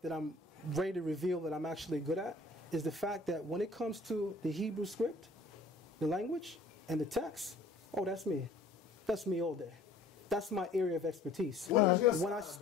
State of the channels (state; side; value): quieter; right; 3.1 dB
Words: that I'm ready to reveal that I'm actually good at is the fact that when it comes to the Hebrew script, the language, and the text, oh, that's me. That's me all day. That's my area of expertise. When I